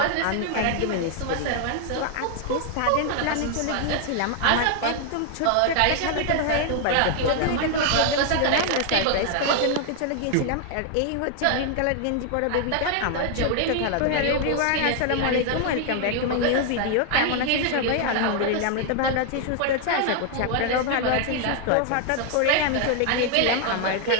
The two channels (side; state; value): both; different; correlation 0.00